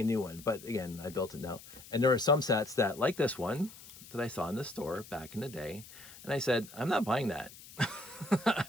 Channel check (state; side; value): noise; left; hiss, 18 dB below the sound